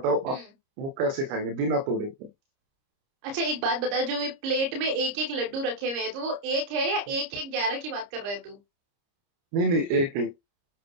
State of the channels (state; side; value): late; left; 30 ms